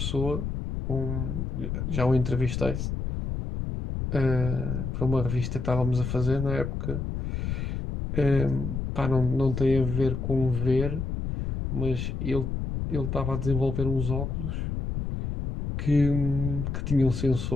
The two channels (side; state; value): left; noise; rumble, 3 dB below the sound